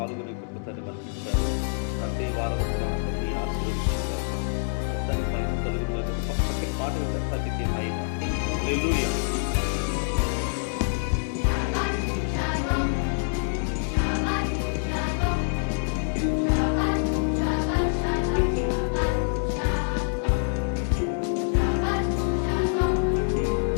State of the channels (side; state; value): right; silent; 61 dB below the other